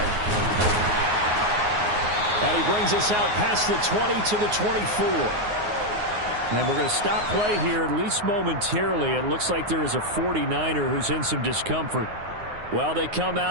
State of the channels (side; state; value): left; late; 9.5 ms